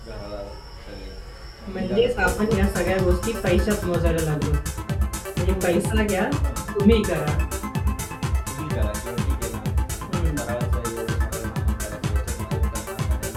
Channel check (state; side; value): identical; both; correlation 1.00